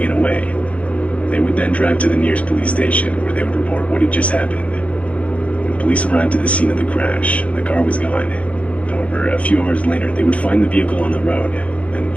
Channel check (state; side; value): late; right; 0.064 ms